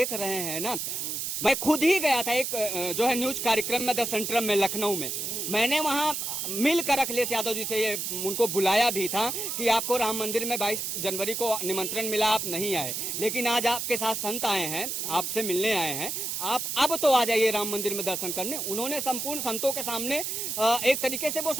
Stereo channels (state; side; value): noise; right; hiss, 3 dB below the sound